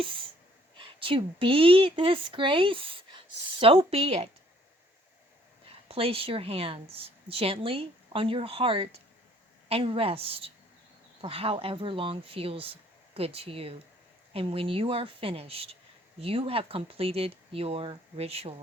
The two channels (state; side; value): normal; both; correlation 0.62